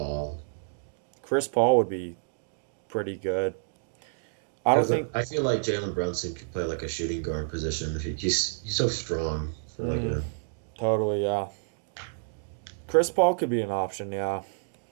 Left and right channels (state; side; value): silent; left; digital silence